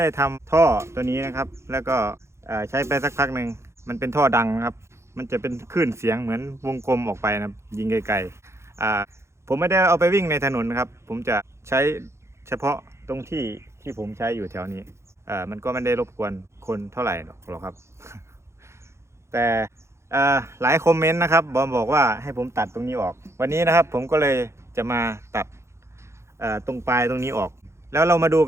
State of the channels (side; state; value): left; late; 0.13 ms